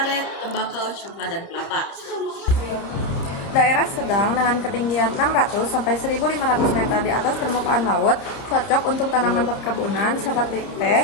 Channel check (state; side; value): late; right; 30 ms